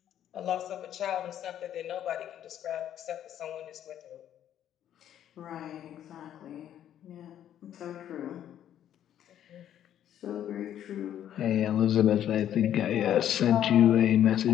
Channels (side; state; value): right; quieter; 10.8 dB